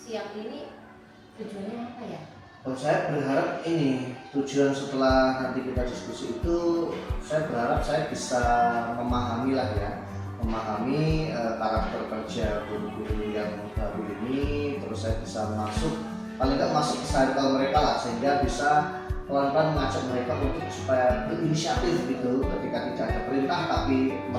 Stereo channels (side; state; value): both; identical; correlation 1.00